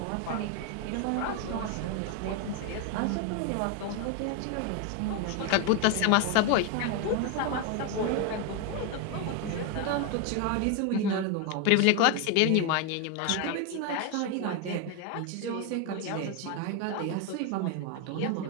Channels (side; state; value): both; different; correlation 0.01